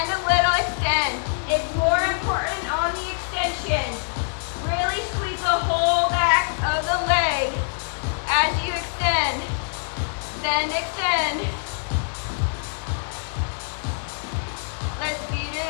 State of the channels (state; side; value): silent; right; 57 dB below the other